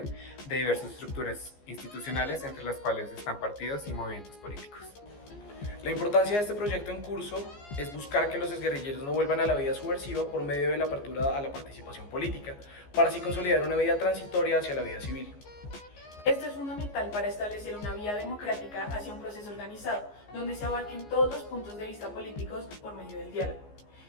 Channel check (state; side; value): late; right; 14 ms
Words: de diversas estructuras institucionales entre las cuales están partidos y movimientos políticos. La importancia de este proyecto en curso es buscar que los exguerrilleros no vuelvan a la vida subversiva por medio de la apertura a la participación política, para así consolidar una vida transitoria hacia la vida civil. Esto es fundamental para establecer una vía democrática hacia un proceso organizado, donde se abarquen todos los puntos de vista políticos por medio del diálogo.